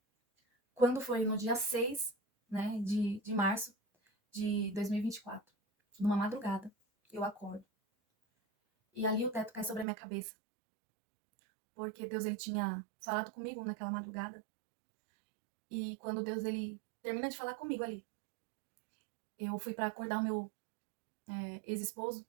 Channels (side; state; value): left; drops out; at 9.9 s